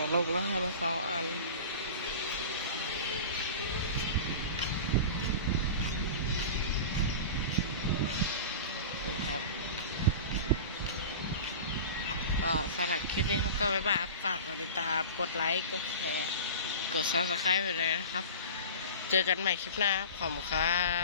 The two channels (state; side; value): inverted; both; correlation -0.33